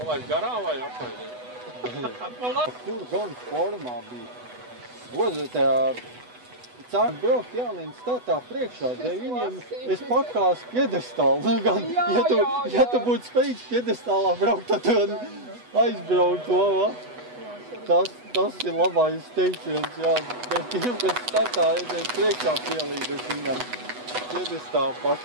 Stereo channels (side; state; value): left; late; 8.1 ms